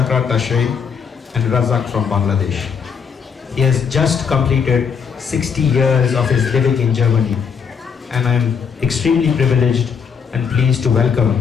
Tashay and Razak from Bangladesh. He has just completed 60 years of his living in Germany, and I am extremely privileged and pleased to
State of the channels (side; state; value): right; quieter; 6.4 dB